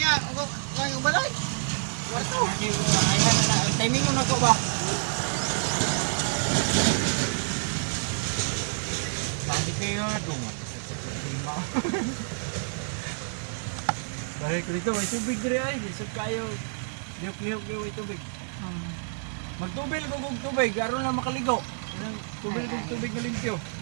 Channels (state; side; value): silent; left; digital silence